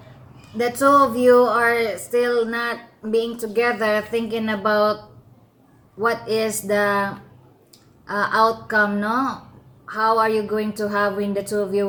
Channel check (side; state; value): both; identical; correlation 1.00